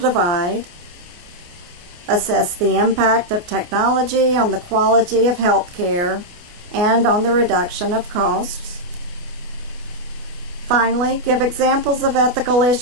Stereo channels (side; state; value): left; late; 28 ms